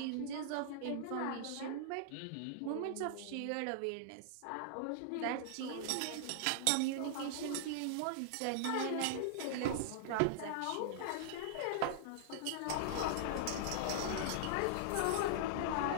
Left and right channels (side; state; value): both; different; correlation -0.01